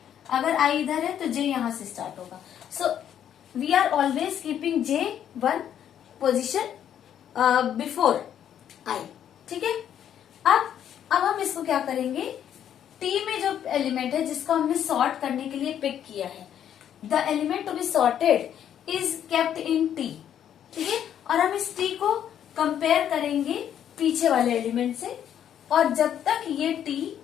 अगर I इधर है तो j यहाँ से स्टार्ट होगा. So we are always keeping j one position before I. ठीक है, अब हम इसको क्या करेंगे, t में जो एलिमेंट है जिसको हमने सॉर्ट करने के लिए पिक किया है, the element to be sorted is kept in t. ठीक है, और हम इस t को कंपेयर करेंगे पीछे वाले एलिमेंट से, और जब तक ये t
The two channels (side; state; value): right; quieter; 9.8 dB